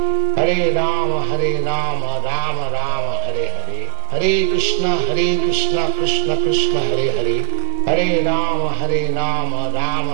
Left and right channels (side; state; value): left; silent; 59 dB below the other